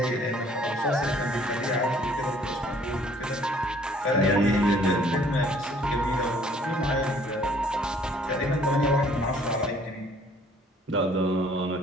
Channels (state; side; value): normal; both; correlation 0.58